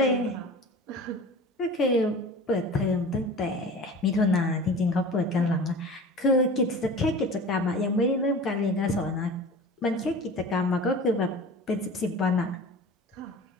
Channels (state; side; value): normal; both; correlation 0.38